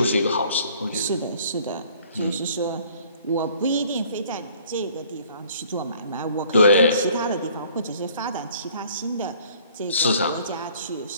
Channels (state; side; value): inverted; both; correlation -0.56